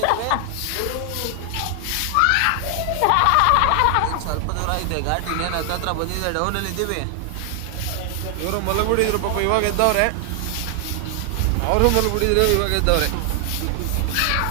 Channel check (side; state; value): both; different; correlation 0.00